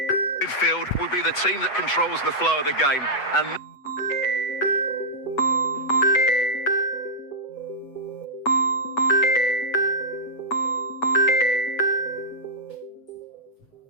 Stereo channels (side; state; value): right; late; 8.1 ms